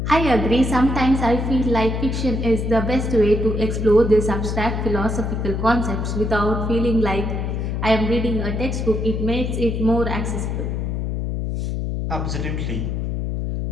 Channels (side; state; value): left; noise; hum, 2 dB below the sound